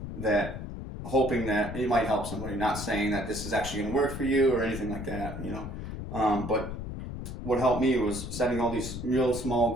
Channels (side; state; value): left; noise; rumble, 7 dB below the sound